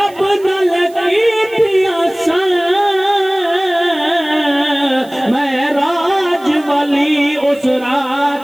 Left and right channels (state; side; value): noise; right; hiss, 25 dB below the sound